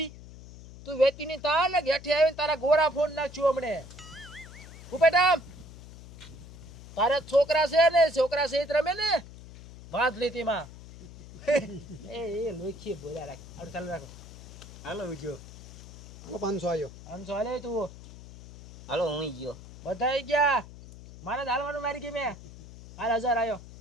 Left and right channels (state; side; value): noise; left; hum, 16 dB below the sound